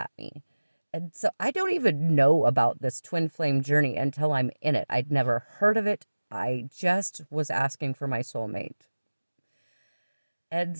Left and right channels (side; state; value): both; inverted; correlation -1.00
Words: me. And so I don't even know about this twin flame journey until I'm in it. I'd never heard of it. I just was asking for my soulmate. And